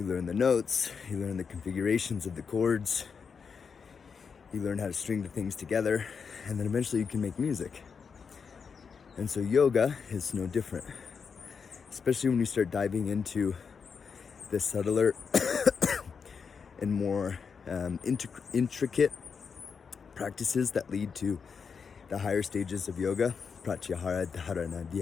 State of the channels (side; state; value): right; quieter; 5.9 dB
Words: learn the notes, you learn the configurations of the chords, you learn how to string the things together, and then eventually you can make music. And so yoga is no different, especially when you start diving into the subtler and more intricate practices that lead to the higher stages of yoga: pratyahara, dharana,